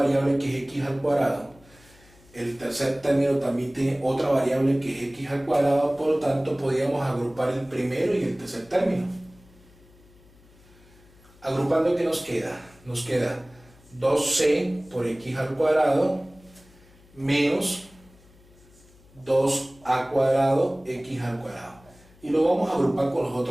que es x al cuadrado, el tercer término también tiene otra variable que es x al cuadrado, por lo tanto podríamos agrupar el primero y el tercer término. Agrupando, ¿qué nos queda? Nos queda 2c por x al cuadrado menos 2a cuadrado x al cuadrado. Y lo vamos a agrupar con los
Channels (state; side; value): noise; left; hum, 27 dB below the sound